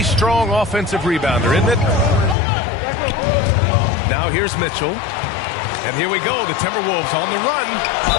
strong offensive rebounder, isn't it? Now here's Mitchell. And here we go, the Timberwolves on the run.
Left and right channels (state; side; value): drops out; right; at 2.4 s